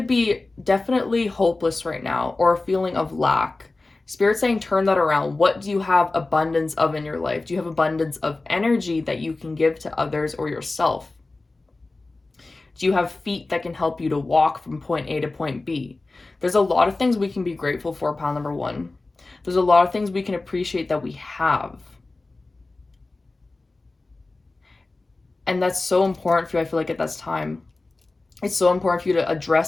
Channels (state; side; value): quieter; right; 3.3 dB